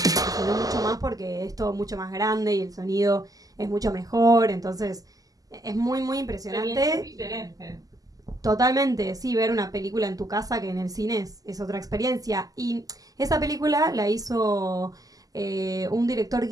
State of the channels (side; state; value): left; late; 0.17 ms